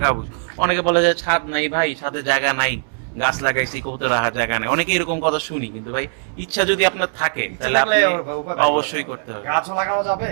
উচিত। অনেকে বলে যে ছাদ নাই ভাই, ছাদে জায়গা নাই, গাছ লাগাইছি, কবুতর রাখার জায়গা নেই, অনেকে এরকম কথা শুনি। কিন্তু ভাই ইচ্ছা যদি আপনার থাকে তাহলে আপনি অবশ্যই করতে হবে। গাছও লাগানো যাবে,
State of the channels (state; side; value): silent; left; 62 dB below the other